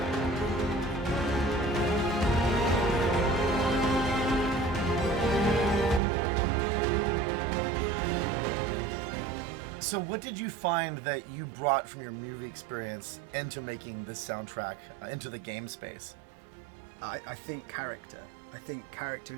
So what did you find that you brought from your movie experience into making this soundtrack, into the game space? I think character. I think character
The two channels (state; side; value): drops out; left; at 6.0 s